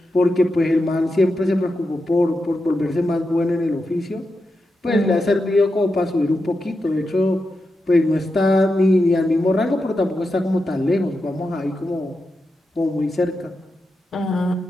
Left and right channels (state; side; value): normal; both; correlation 0.88